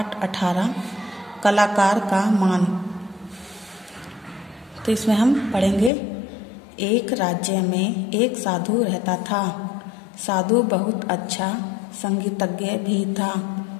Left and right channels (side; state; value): right; drops out; at 5.9 s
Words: 18 कलाकार का मान। तो इसमें हम पढ़ेंगे। एक राज्य में एक साधु रहता था। साधु बहुत अच्छा संगीतज्ञ भी था।